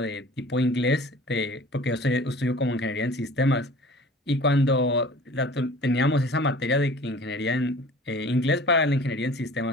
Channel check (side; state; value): both; normal; correlation 0.45